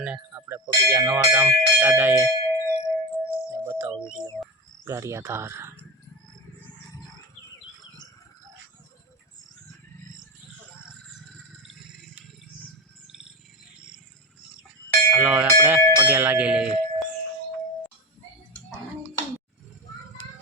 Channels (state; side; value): normal; both; correlation 0.18